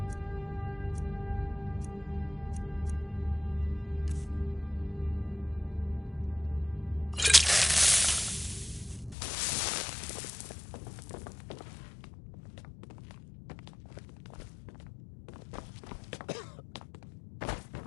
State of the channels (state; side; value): drops out; right; at 9.2 s